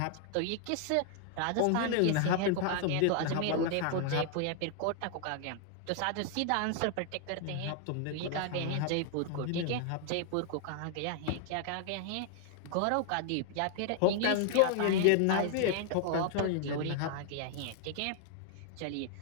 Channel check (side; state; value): both; different; correlation 0.00